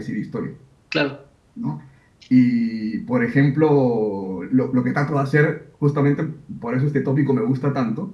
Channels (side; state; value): both; identical; correlation 1.00